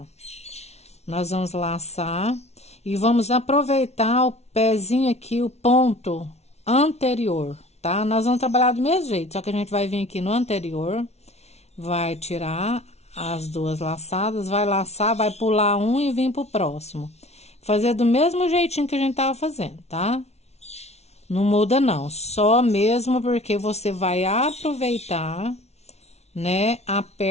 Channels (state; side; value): late; right; 0.31 ms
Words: Nós vamos laçar e vamos aproveitar o pezinho aqui, o ponto anterior, tá? Nós vamos trabalhar do mesmo jeito, só que a gente vai vir aqui no anterior, vai tirar as duas laçadas, vai laçar, vai pular um e vir pro próximo. Fazer do mesmo jeitinho que a gente tava fazendo, tá? Não muda não, só mesmo porque você vai aproveitar, né, a